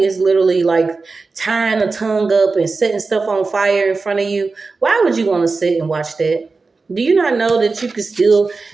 literally like tying a tongue up and setting stuff on fire in front of you, why would you want to sit and watch that? Do you not know that you could still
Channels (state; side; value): quieter; left; 4.1 dB